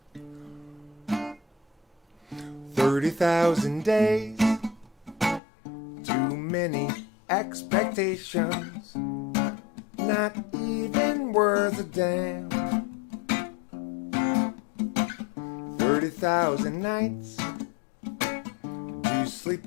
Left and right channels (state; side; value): drops out; right; at 5.4 s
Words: 30,000 days. Too many expectations. Not even worth a damn. 30,000 nights. You